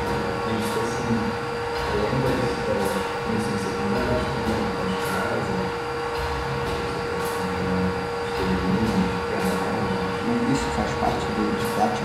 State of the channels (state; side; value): identical; both; correlation 1.00